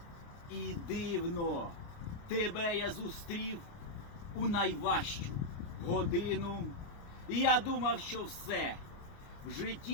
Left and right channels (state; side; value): late; right; 29 ms